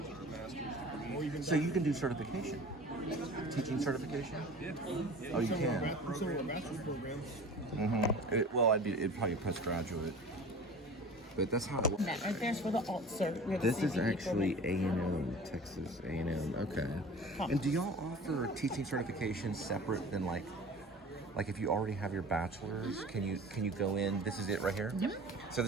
So you can do certification, teaching certification. Yeah. Oh, you can. Some of our bachelor's programs. Well, it'd probably postgraduate, but that's how it works. That right there's for the alt cert. We have This a is CPE actually program. A&M, Texas A&M. Okay. And do y'all offer teaching certification separate than like if you already have your bachelor's, can you go in? This is it right here. Yep. So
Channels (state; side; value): normal; both; correlation 0.40